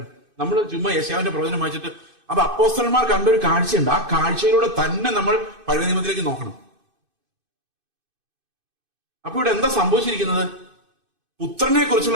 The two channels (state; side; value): late; left; 2.5 ms